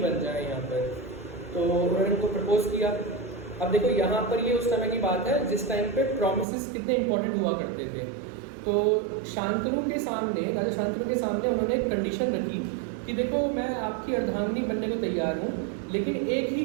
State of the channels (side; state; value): left; drops out; at 6.5 s